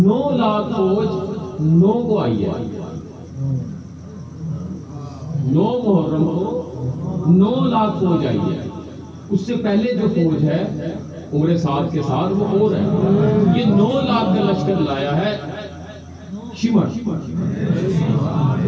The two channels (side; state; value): both; identical; correlation 1.00